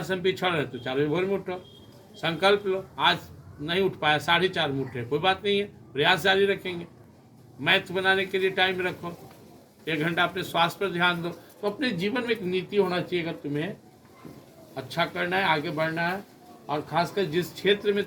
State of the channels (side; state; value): both; identical; correlation 1.00